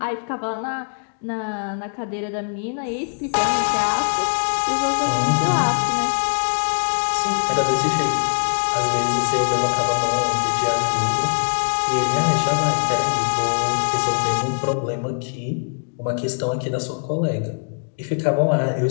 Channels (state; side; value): silent; right; digital silence